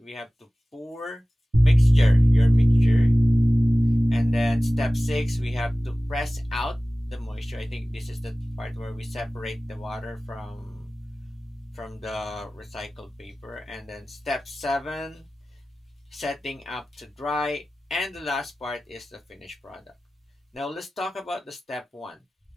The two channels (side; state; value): both; normal; correlation 0.97